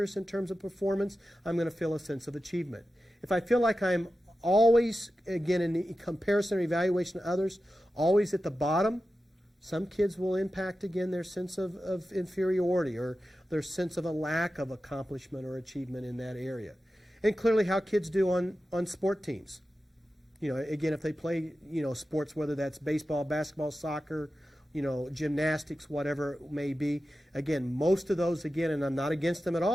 in terms of performance, I'm going to feel a sense of achievement. If I feel like I'm always, again, in the comparison or evaluation of others, always at the bottom, some kids will impact, again, their sense of inferiority or their sense of a lack of accomplishment or achievement in that area. And clearly how kids do on sport teams. Again, if they play, sports, whether that's baseball, basketball, soccer, gymnastics, whatever it may be. Again, most of those, again, and I'm not against them at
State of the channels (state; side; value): normal; both; correlation 0.93